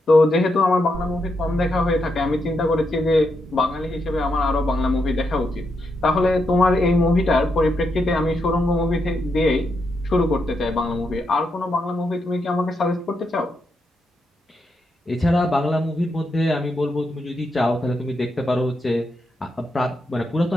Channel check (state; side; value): normal; both; correlation 0.82